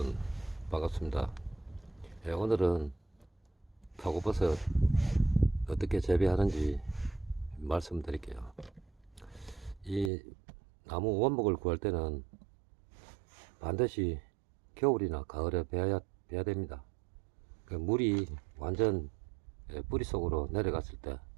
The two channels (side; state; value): left; drops out; at 10.1 s